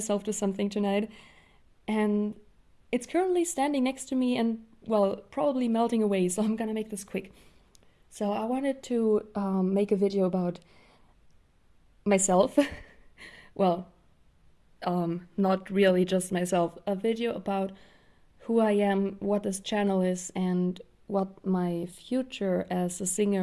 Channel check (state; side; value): identical; both; correlation 1.00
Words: to something tonight, and it's currently standing next to me and, well, probably melting away, so I'm gonna make this quick. So I wanted to make a video about myself. Well, not really just myself, a video about who I am, what this channel is, and what my future as a